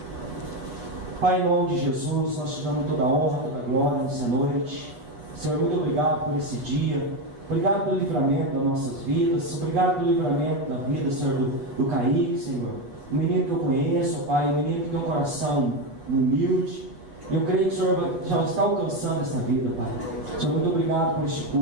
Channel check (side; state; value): left; late; 8.3 ms